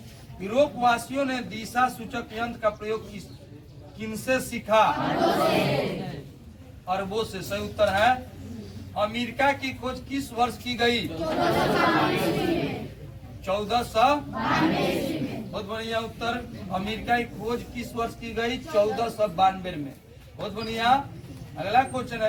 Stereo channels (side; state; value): both; identical; correlation 1.00